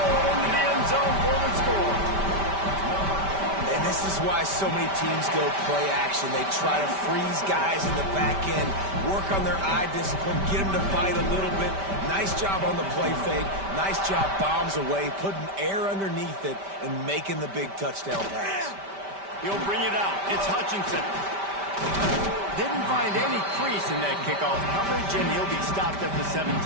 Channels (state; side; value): late; left; 5.1 ms